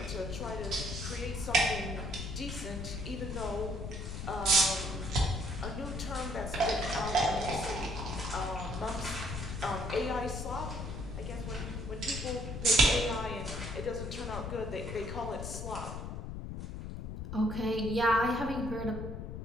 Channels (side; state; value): left; noise; rumble, 6 dB below the sound